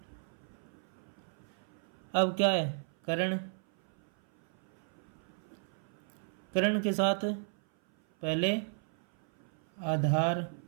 अब क्या है? कर्ण। कर्ण के साथ पहले आधार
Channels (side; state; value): left; silent; 55 dB below the other